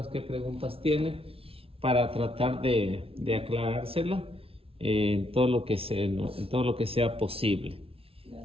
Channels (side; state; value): left; late; 0.27 ms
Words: qué preguntas tiene para tratar de aclarársela en todo lo que en todo lo que sea posible.